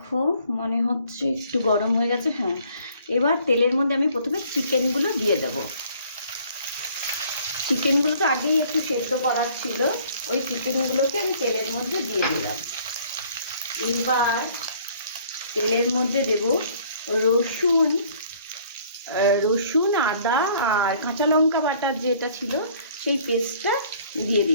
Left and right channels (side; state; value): both; inverted; correlation -0.57